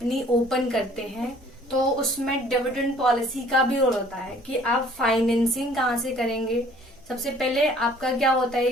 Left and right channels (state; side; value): normal; both; correlation 0.55